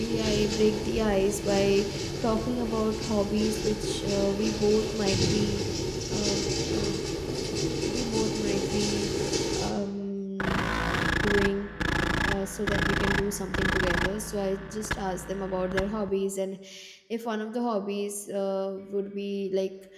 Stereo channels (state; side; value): identical; both; correlation 1.00